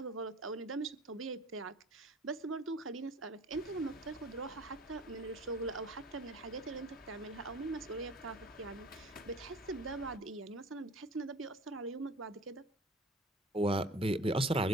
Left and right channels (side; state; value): both; normal; correlation 0.45